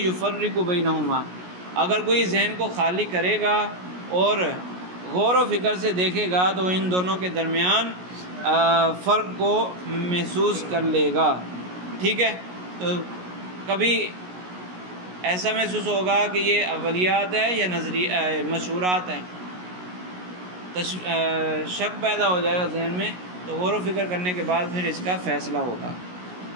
يُفَرِّقُ بَيْنَهُمَا، اگر کوئی ذہن کو خالی کرے گا اور غور و فکر سے دیکھے گا تو ان دونوں کے درمیان فرق کو محسوس کر لے گا، ٹھیک ہے؟ تو کبھی ایسا محسوس ہوگا کہ یہ اولیات ہے یا مشہورات ہیں، شک پیدا ہو جائے گا ذہن میں تو غور و فکر کرنے کے بعد پھر اس کا فیصلہ ہوگا۔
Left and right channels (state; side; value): late; left; 16 ms